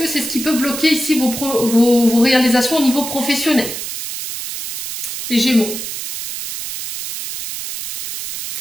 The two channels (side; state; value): right; noise; hiss, 7 dB below the sound